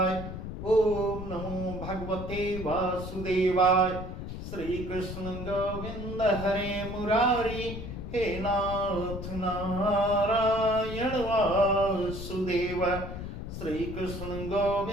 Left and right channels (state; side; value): noise; left; rumble, 7 dB below the sound